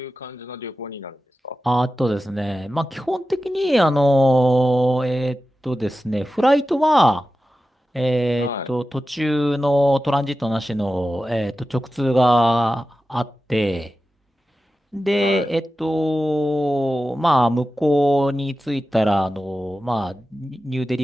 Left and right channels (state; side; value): normal; both; correlation 0.93